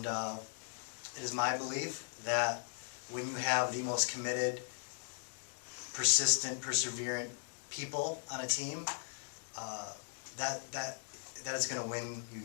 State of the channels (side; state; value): right; silent; digital silence